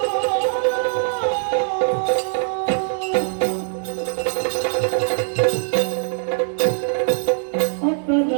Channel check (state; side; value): silent; left; digital silence